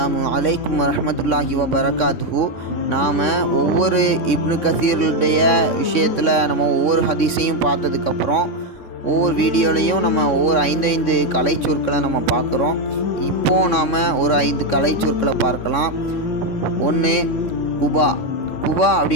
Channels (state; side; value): late; right; 3.6 ms